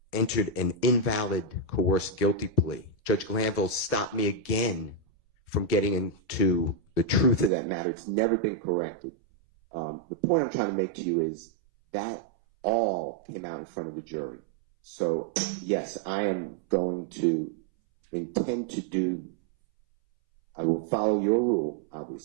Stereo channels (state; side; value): drops out; left; at 7.5 s